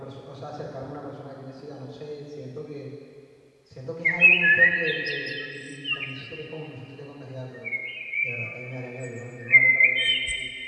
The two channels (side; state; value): both; identical; correlation 1.00